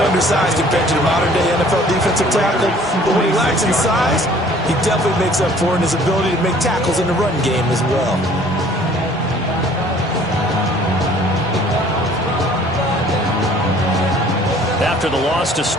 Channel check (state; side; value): normal; both; correlation 0.54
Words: undersized compared to the modern-day NFL defensive tackle, but when he lacks in size, he definitely makes up for it in his ability to make tackles in the run game as well. After the loss to